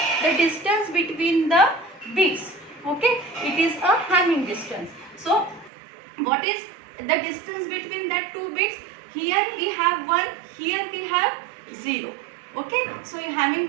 The distance between the bits. Okay, it is a Hamming distance. So what is the distance between that 2 bits? Here we have 1, here we have 0. Okay, so Hamming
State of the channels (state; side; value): drops out; left; at 5.7 s